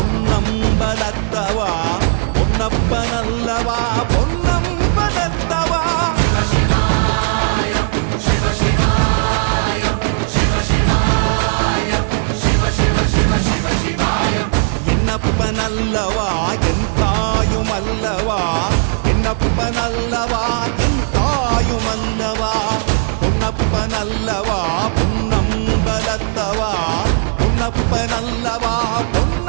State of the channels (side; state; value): left; silent; digital silence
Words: பொன்னப்பனல்லவா பொன்னம்பலத்தவா. என்னப்பனல்லவா என் தாயுமல்லவா, என்னப்பனல்லவா என் தாயுமல்லவா, பொன்னப்பனல்லவா பொன்னம்பலத்தவா, பொன்னப்பனல்லவா